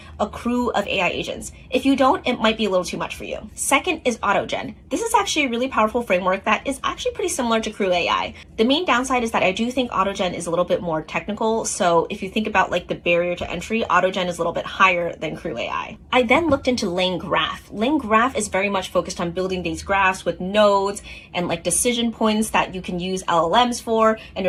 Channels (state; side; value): identical; both; correlation 1.00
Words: a crew of AI agents. If you don't, it might be a little too much for you. Second is AutoGen. This is actually a really powerful framework that is actually pretty similar to CrewAI. The main downside is that I do think AutoGen is a little bit more technical. So if you think about like the barrier to entry, AutoGen is a little bit higher than CrewAI. I then looked into LangGraph. LangGraph is very much focused on building these graphs with nodes and like decision points that you can use LLMs for, and